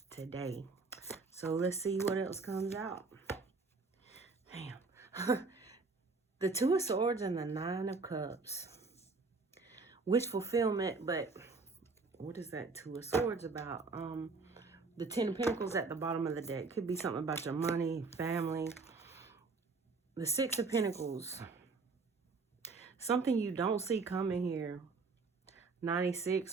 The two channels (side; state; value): left; quieter; 4.1 dB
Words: today. So let's see what else comes out. Damn. The Two of Swords and the Nine of Cups. Wish fulfillment, but what is that Two of Swords about? The Ten of Pentacles at the bottom of the deck. Could be something about your money, family. The Six of Pentacles. Something you don't see coming here.